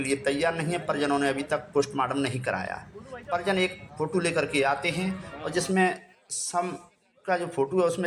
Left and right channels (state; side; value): identical; both; correlation 1.00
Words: लिए तैयार नहीं है। परिजनों ने अभी तक पोस्टमार्टम नहीं कराया। परिजन एक फ़ोटो लेकर के आते हैं और जिसमें सब का जो फोटो है उसमें